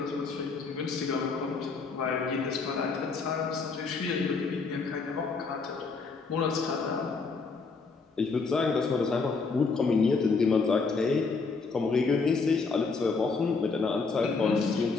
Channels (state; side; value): quieter; right; 4.5 dB